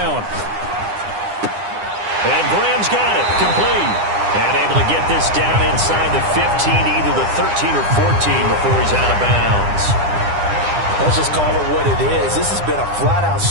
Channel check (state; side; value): late; left; 9.9 ms